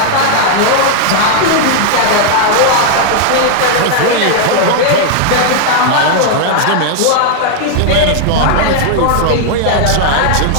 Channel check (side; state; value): both; different; correlation 0.00